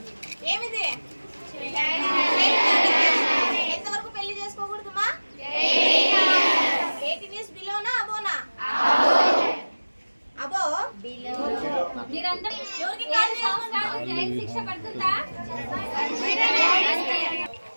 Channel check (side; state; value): both; inverted; correlation -1.00